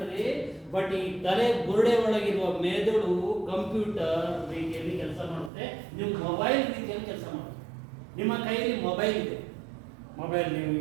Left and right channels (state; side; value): drops out; left; at 5.5 s